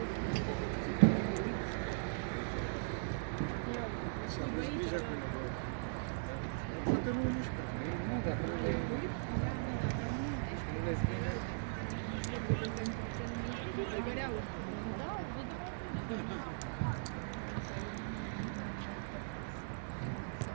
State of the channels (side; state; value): left; silent; digital silence